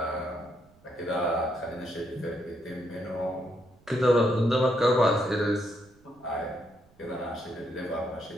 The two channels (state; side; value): noise; right; rumble, 30 dB below the sound